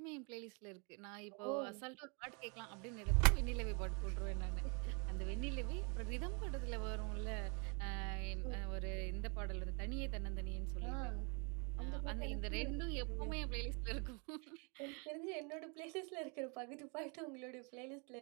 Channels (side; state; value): left; quieter; 34.5 dB